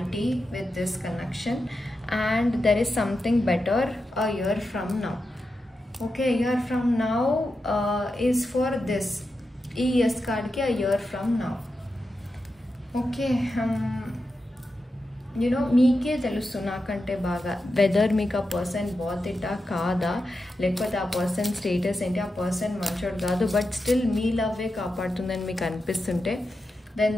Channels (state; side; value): normal; both; correlation 0.89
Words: with this connection, and there is something better a year from now. Okay, a year from now is for this yes card ki a year from now. Okay, you know, మీకే తెలుసు నాకంటే బాగా వెదర్ మీకు ఆ పర్సన్ బాధిటా కాదా, లేకపోతే ఆ పర్సన్ స్టేటస్ ఏంటి, ఆ పర్సన్ మంచోడు కాదు, బట్ స్టిల్ మీ లవ్వే కాపాడుతుందని మీకు అనిపిస్తుంటే then